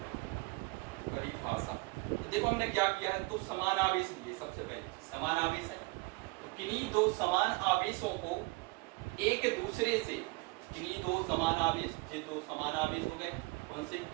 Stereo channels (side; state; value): left; quieter; 25.8 dB